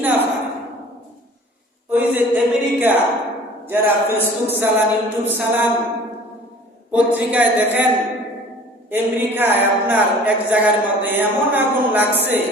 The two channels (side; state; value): both; normal; correlation 0.47